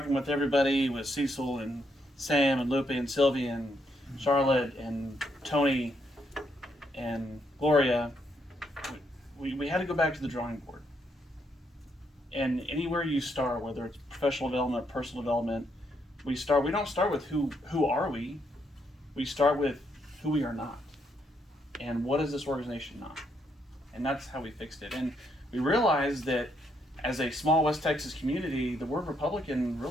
with everybody, with Cecil and Sam and Lupe and Sylvia and Charlotte and Tony and Gloria, we had to go back to the drawing board. And anywhere you start, whether it's professional development, personal development, we don't start with who are we. We start with who we are not. And what is this organization not? And that's how we fixed it. And we realized that as a small West Texas community, the word Republican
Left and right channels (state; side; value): normal; both; correlation 0.76